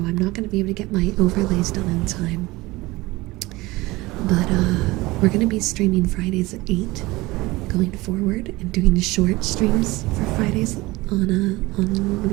not going to be able to get my overlays done in time. But we're going to be streaming Fridays at 8 going forward, and doing the short streams for Fridays on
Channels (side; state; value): left; quieter; 20.7 dB